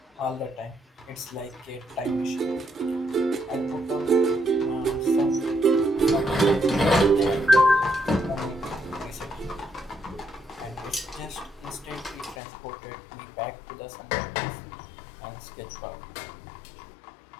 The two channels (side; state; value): right; drops out; at 12.4 s